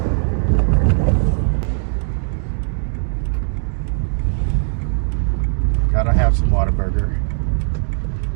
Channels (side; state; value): left; silent; digital silence